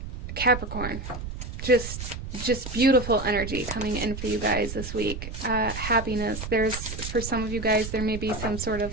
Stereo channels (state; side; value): noise; right; rumble, 8 dB below the sound